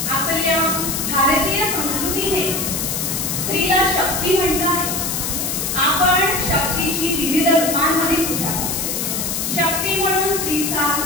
आपल्या भारतीय संस्कृतीने स्त्रीला शक्ती म्हटलं आहे। आपण शक्तीची विविध रूपांमध्ये पूजा करतो। शक्ती म्हणून स्त्रीचा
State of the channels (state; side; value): noise; left; hiss, 1 dB below the sound